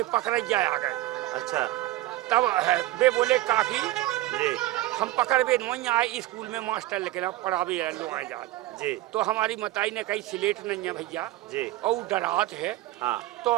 पकड़ैया आ गए। अच्छा। तब वे बोले काकी जी हम पकड़े नहीं आए, स्कूल में मास्टर लेके ना पढ़ावे लो आए जा। जी तो हमारी मताई ने कही स्लेट नहीं है भैया, जी। और डरात है। हाँ तो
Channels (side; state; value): left; quieter; 16.7 dB